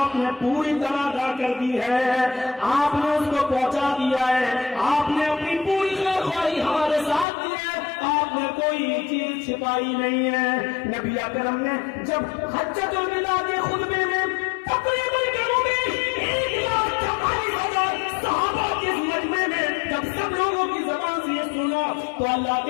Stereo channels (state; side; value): drops out; right; at 7.2 s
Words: نے پوری طرح ادا کر دی ہے, آپ نے اس کو پہنچا دیا ہے, آپ نے اپنی پوری خواہی ہمارے ساتھ دی ہے, آپ نے کوئی چیز چھپائی نہیں ہے. نبی اکرم نے جب حجۃ الوداع کے خطبے میں تقریباً 1,44,000 صحابہ کے مجمع میں جب سب لوگوں کی زبان سے یہ سنا تو اللہ کے